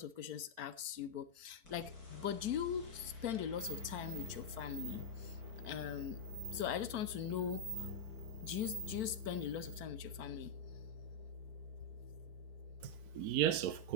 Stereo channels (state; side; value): late; left; 4.5 ms